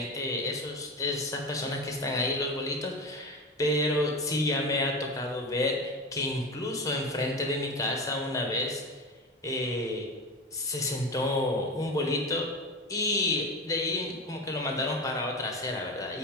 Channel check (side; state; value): both; normal; correlation 0.24